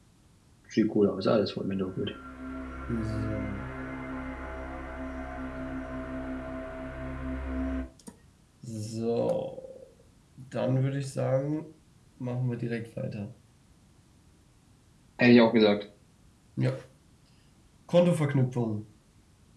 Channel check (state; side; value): identical; both; correlation 1.00